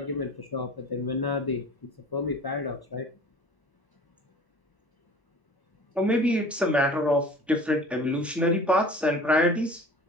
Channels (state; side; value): normal; both; correlation 0.44